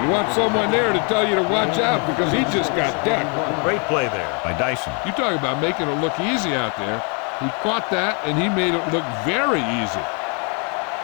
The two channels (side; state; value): right; quieter; 36.3 dB